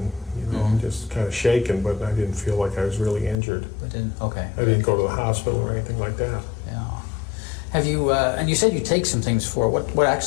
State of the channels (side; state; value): right; drops out; at 3.4 s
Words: just kind of shaken, but I didn't feel like I was really injured. But didn't. Okay. I didn't go to the hospital or anything like that. Yeah. Have you? And you said you take some things for it. What